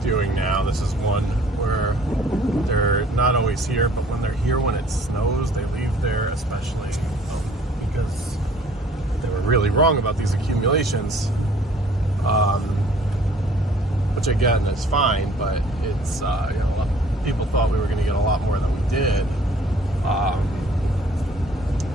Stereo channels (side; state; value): both; normal; correlation 0.56